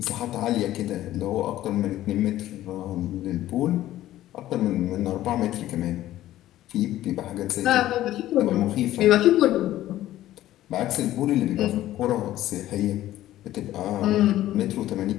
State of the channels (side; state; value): right; quieter; 14.1 dB